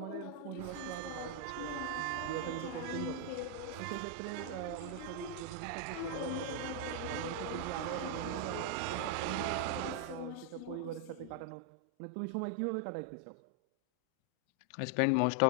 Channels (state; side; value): different; both; correlation 0.00